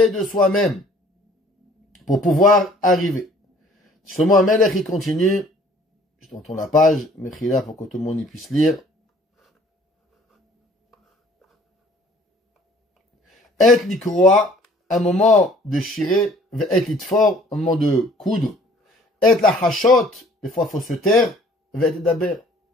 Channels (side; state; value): both; normal; correlation 0.55